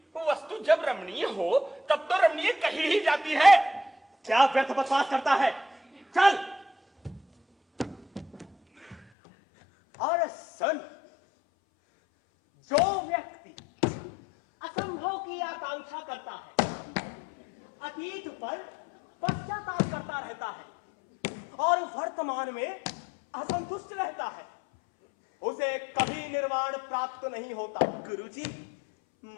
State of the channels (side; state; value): right; drops out; at 9.1 s